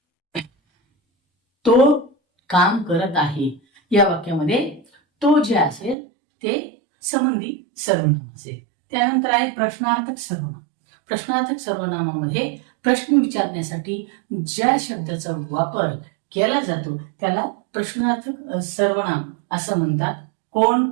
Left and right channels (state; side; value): drops out; left; at 6.0 s